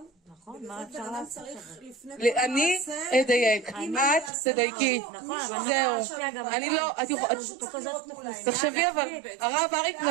נכון, מה אפשר לעשות? אני אדייק, את תדייקי. זהו. אני לא, תחשבי אבל, הרב אריק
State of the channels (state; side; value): drops out; left; at 4.3 s